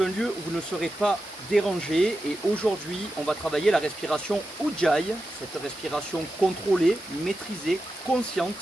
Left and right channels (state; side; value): normal; both; correlation 0.90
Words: un lieu où vous ne serez pas dérangé et aujourd'hui on va travailler la respiration Ujjayi, cette respiration contrôlée, maîtrisée,